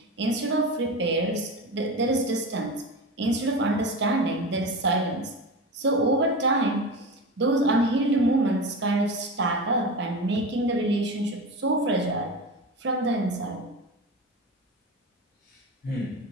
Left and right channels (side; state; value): both; normal; correlation 0.26